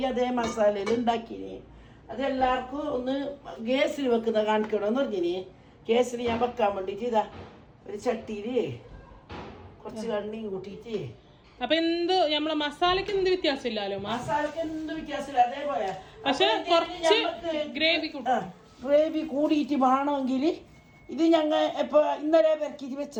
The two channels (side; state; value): both; identical; correlation 1.00